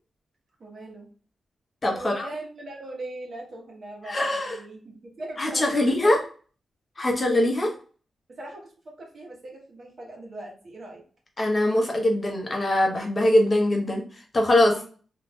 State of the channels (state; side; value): normal; both; correlation 0.90